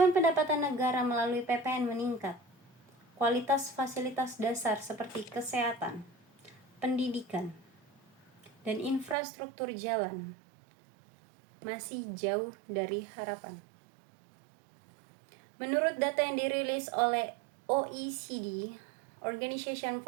pendapatan negara melalui PPN meningkat, kualitas fasilitas dasar seperti kesehatan, pendidikan, dan infrastruktur jalan masih jauh dari harapan. Menurut data yang dirilis oleh OECD, Organization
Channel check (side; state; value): left; drops out; at 9.2 s